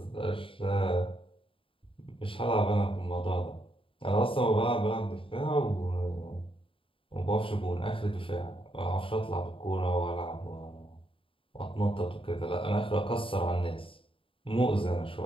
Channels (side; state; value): right; late; 0.26 ms